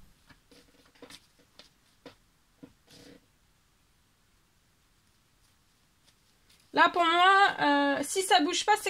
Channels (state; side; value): identical; both; correlation 1.00